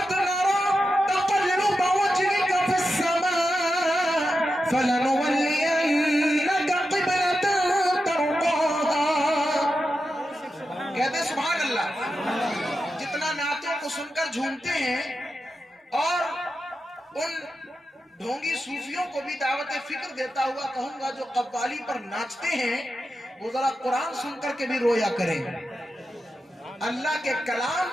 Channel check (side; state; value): both; normal; correlation 0.89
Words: نرى تقلب وجهك في السماء فلنولينك قبلة ترضاها کہتے سبحان اللہ جتنا نعتوں کو سن کر جھومتے ہیں اور ان ڈھونگی صوفیوں کو بھی دعوت فکر دیتا ہوا کہوں گا جو قوالی پر ناچتے ہیں وہ ذرا قرآن سن کر کے بھی رویا کریں اللہ کے کلام